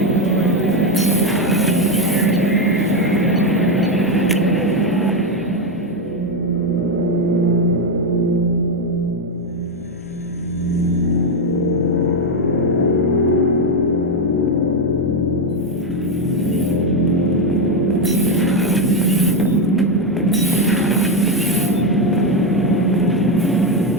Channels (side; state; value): both; normal; correlation 0.08